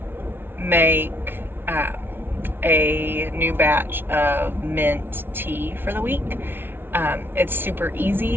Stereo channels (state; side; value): late; left; 0.11 ms